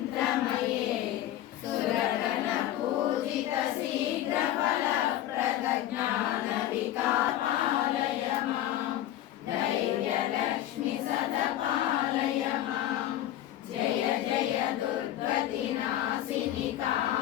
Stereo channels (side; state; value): right; quieter; 13.0 dB